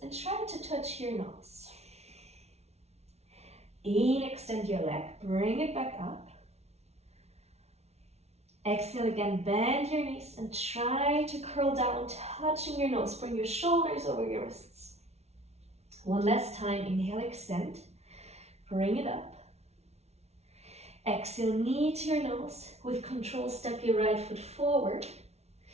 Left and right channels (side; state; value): left; late; 0.31 ms